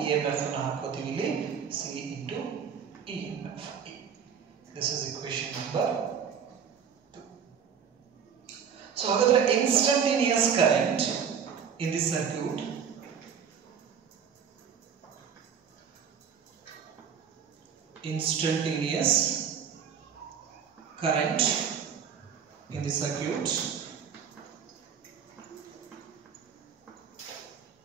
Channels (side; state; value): left; quieter; 7.3 dB